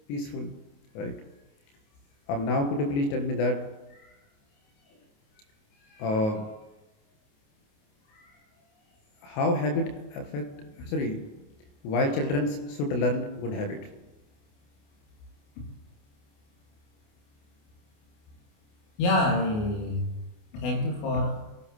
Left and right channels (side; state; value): right; late; 28 ms